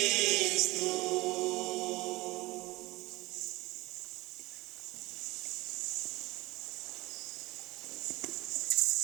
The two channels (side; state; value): left; quieter; 20.6 dB